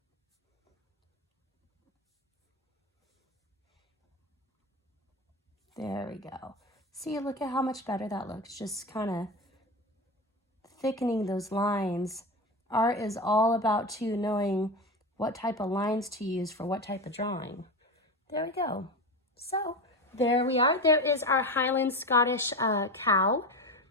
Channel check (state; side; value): normal; both; correlation 0.22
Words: There we go. See, look at how much better that looks. Just kind of thickening those lines. Art is all about too knowing what type of lines to use for what type of drawing. There we go. So there we are. There is our Highland Scottish cow.